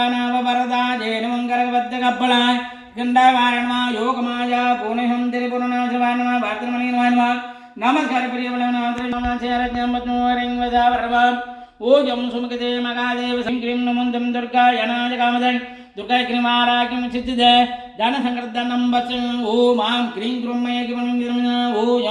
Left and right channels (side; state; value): both; identical; correlation 1.00